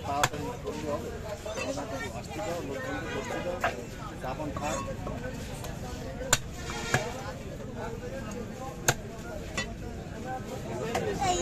তাড়াতাড়ি করতে হবে। আসতে দাও, লোকজনকে বসতে দাও, চাপান খাক।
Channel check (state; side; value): identical; both; correlation 1.00